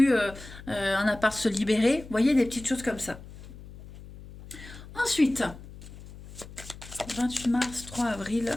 un appart se libérait. Vous voyez, des petites choses comme ça. Ensuite, 28 mars, 3 avril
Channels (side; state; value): left; noise; hum, 16 dB below the sound